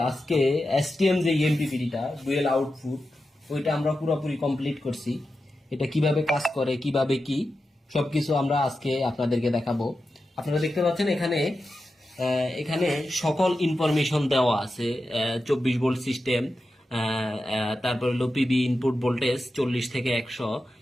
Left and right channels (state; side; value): normal; both; correlation 0.91